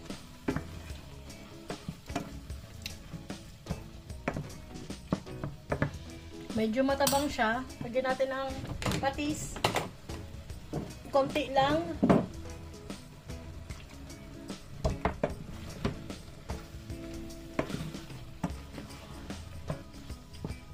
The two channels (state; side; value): identical; both; correlation 1.00